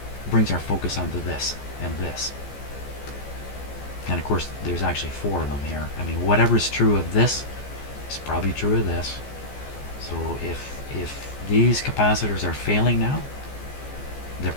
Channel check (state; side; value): late; right; 14 ms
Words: focus onto this and this. And of course, there's actually 4 of them here. I mean, whatever's true of this is probably true of this. So if these capacitors are failing now, they're